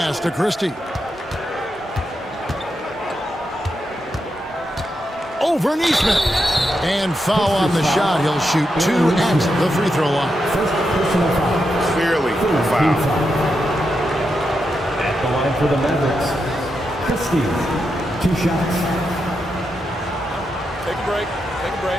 to Christie. Over Neesmith. And foul on the shot. He'll shoot 2 at the free throw line. Clearly a foul. At the line for the Mavericks, Christie, 2 shots. Take a break. Take a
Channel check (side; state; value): both; normal; correlation 0.85